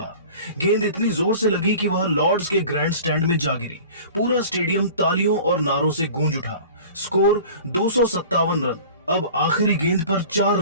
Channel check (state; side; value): inverted; both; correlation -0.41